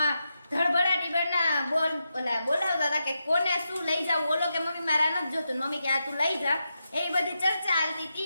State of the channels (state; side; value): inverted; both; correlation -0.87